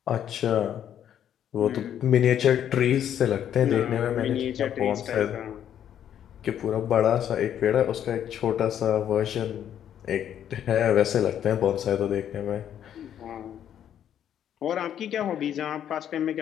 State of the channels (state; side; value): quieter; right; 9.9 dB